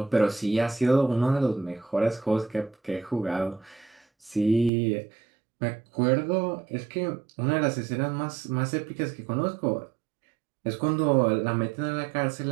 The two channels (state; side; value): drops out; left; at 4.7 s